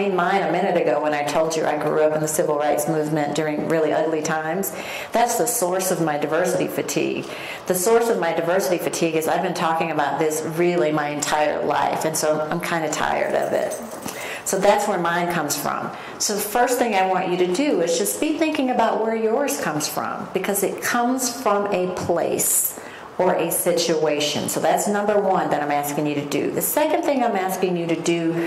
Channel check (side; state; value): both; identical; correlation 1.00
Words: mine a minute ago when I told you I grew up in the civil rights movement during really ugly times. That's the source of my diversity fatigue. The source of my diversity fatigue is I've been talking about this really my entire life, and so I'm kind of tired of it. So that's where mine comes from. So the first thing I want you to do is just be thinking about where yours comes from, because it comes from a place or a situation. So that's number one that I'm asking you to do. The second thing I'm asking you to do